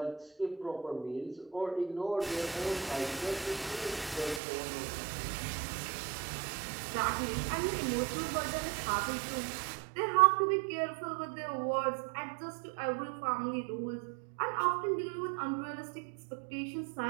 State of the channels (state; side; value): drops out; left; at 4.4 s